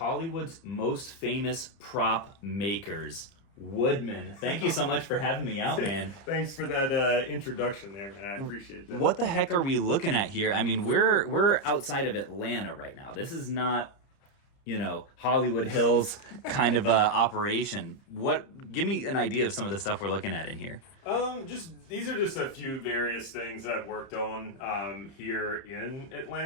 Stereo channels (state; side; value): late; right; 30 ms